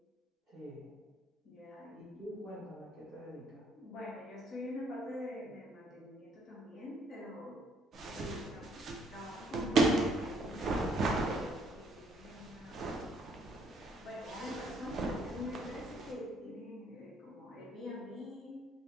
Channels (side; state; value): both; normal; correlation 0.66